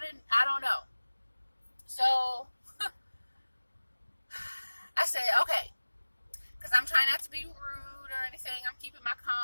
don't know. So, I said, okay, because I'm trying not to be rude or anything. I'm keeping my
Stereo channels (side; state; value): both; inverted; correlation -1.00